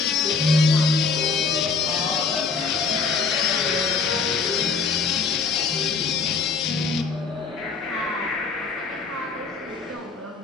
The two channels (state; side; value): quieter; right; 4.9 dB